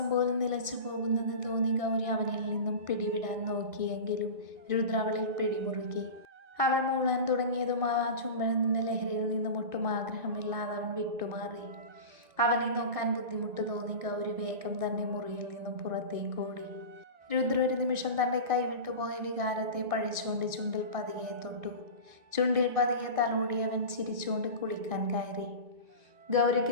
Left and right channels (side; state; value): left; late; 1.9 ms